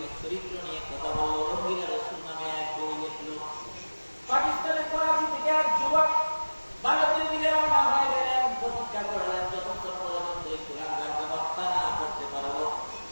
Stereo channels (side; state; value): both; inverted; correlation -1.00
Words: চরিত্র নিয়ে কথা বলল। রঙ্গিলা রাসূল নামে এক বই লিখলো। পাকিস্তানের করাচি থেকে এক যুবক ভারতের দিকে রওনা হয়ে গেলেন। প্রতিজ্ঞা করলেন যতক্ষণ পর্যন্ত এই কুলাঙ্গারকে হত্যা না করতে পারবো,